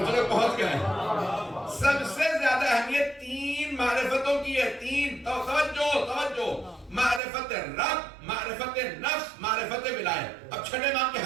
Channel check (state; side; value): drops out; left; at 7.2 s